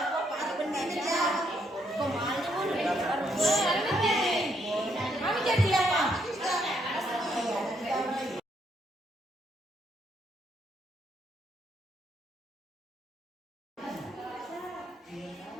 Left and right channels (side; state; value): both; normal; correlation 0.74